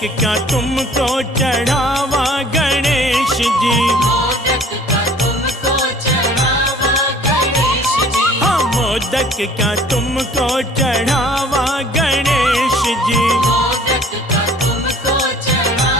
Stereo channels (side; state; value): both; normal; correlation 0.52